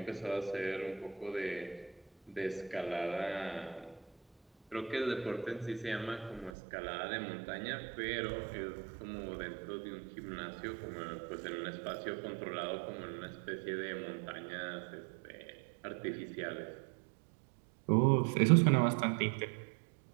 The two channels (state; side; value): drops out; left; at 6.5 s